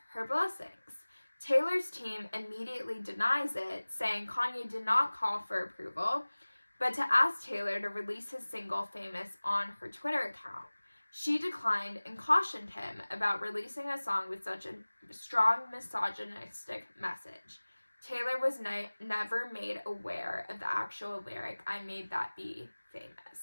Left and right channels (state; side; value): inverted; both; correlation -1.00